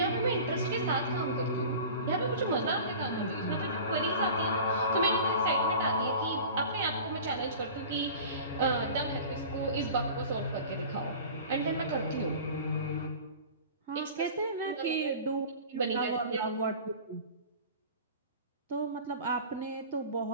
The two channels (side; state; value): both; inverted; correlation -0.39